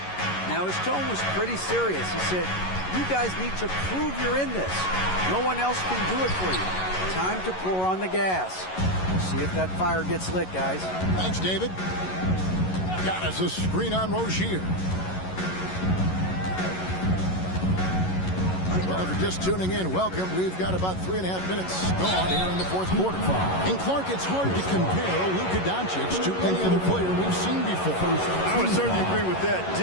Now, his tone was pretty serious. He said, "You guys need to prove you're in this. No one else can do it for you. Time to pour on the gas." We'll see if that fire gets lit, guys. Thanks, David. Got us a screen on Rozier. Well, if you're just tuning in, welcome. We've got about 3.5 minutes gone here in the fourth quarter. And Clark, it's hard to compare Luka Doncic to any other player we've seen before. I would certainly agree with that.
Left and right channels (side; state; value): right; late; 11 ms